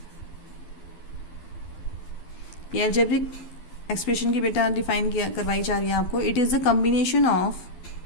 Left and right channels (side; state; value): right; late; 12 ms